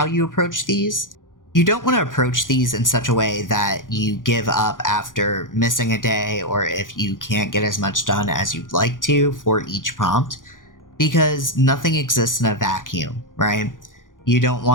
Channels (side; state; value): right; late; 0.89 ms